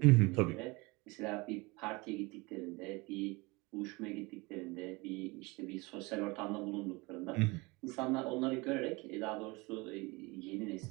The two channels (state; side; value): quieter; left; 25.0 dB